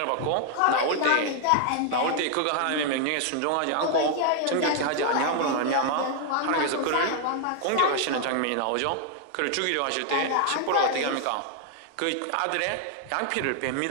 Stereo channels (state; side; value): different; both; correlation 0.00